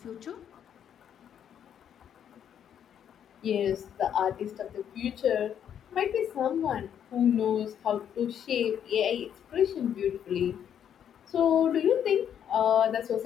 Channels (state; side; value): quieter; right; 9.1 dB